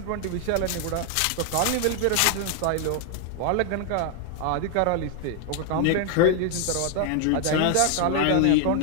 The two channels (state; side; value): different; both; correlation 0.00